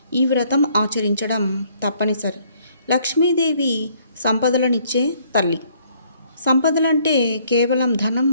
ఈ వ్రతం ఆచరించడం తప్పనిసరి. లక్ష్మీదేవి సంపదలనిచ్చే తల్లి. సంపదలంటే కేవలం ధనం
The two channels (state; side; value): inverted; both; correlation -0.64